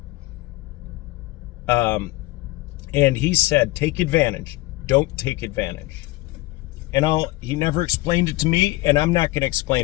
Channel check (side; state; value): right; quieter; 19.8 dB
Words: And he said, take advantage. Don't take advantage. And he never explained it to me, and I'm not going to